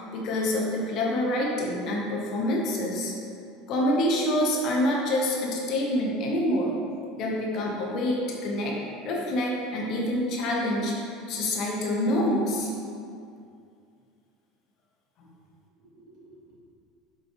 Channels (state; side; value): normal; both; correlation 0.42